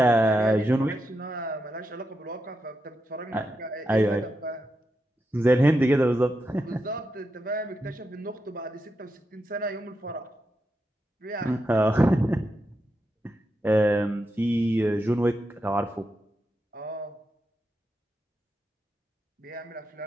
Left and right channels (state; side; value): normal; both; correlation 0.86